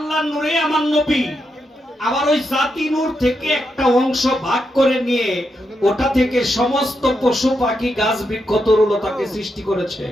নূরে আমার নবী। আবার ওই জাতি নূর থেকে একটা অংশ ভাগ করে নিয়ে ওটা থেকে সমস্ত পশু পাখি, গাছ বৃক্ষ, তরুলতাকে সৃষ্টি করেছে।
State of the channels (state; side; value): normal; both; correlation 0.83